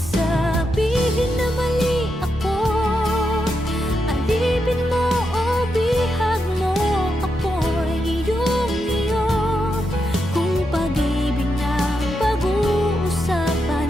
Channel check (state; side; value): normal; both; correlation 0.84